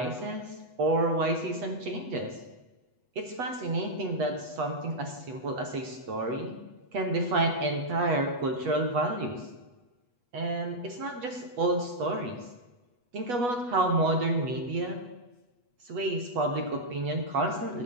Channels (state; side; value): late; left; 8.2 ms